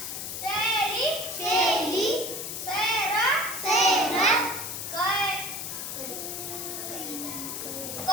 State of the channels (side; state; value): left; noise; hiss, 6 dB below the sound